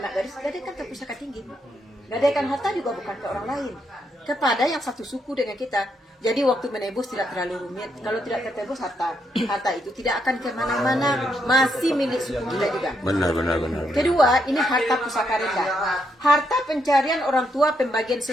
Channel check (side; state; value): both; normal; correlation 0.78